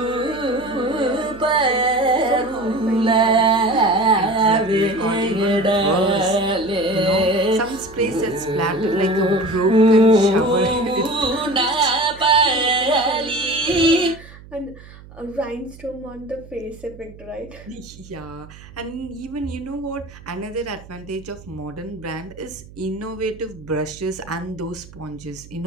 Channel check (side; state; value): right; noise; hum, 20 dB below the sound